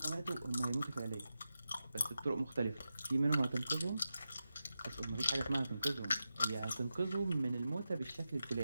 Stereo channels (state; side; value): inverted; both; correlation -0.90